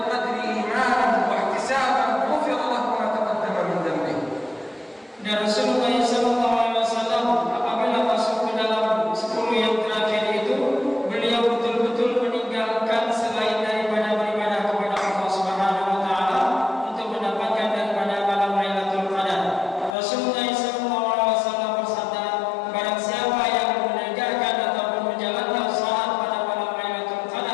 القدر إيمانا واحتسابا غفر له ما تقدم من ذنبه. Dan Rasulullah SAW apabila masuk ke dalam 10 yang terakhir itu, beliau betul-betul meninggalkan selain daripada beribadah kepada Allah Subhanahu wa taala untuk mendapatkan daripada malam Lailatul Qadar. Rasulullah SAW bersabda, barang siapa yang menegakkan ataupun menjalankan salat pada malam Lailatul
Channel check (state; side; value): drops out; right; at 20.0 s